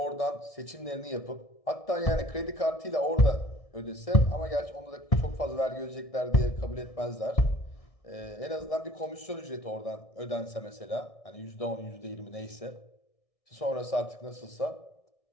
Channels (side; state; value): right; late; 1.6 ms